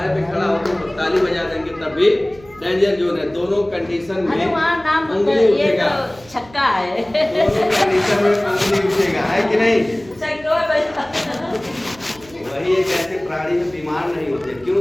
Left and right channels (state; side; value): noise; right; hum, 24 dB below the sound